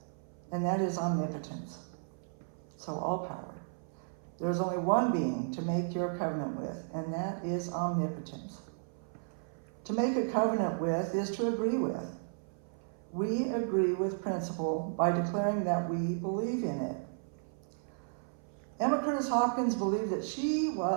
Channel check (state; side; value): silent; left; 55 dB below the other